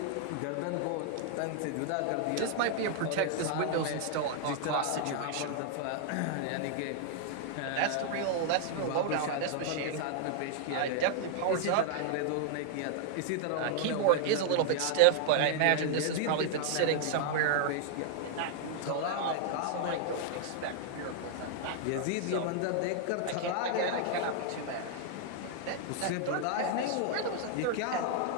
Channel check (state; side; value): different; both; correlation 0.00